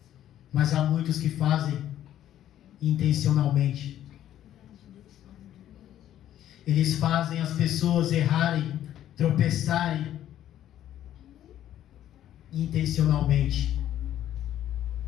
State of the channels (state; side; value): quieter; right; 11.8 dB